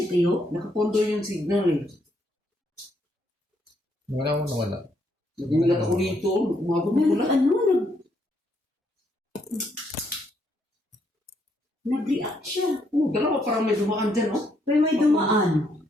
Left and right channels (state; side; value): normal; both; correlation 0.74